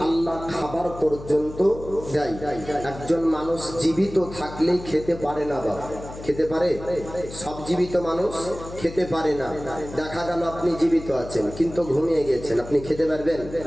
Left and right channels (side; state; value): left; noise; hum, 13 dB below the sound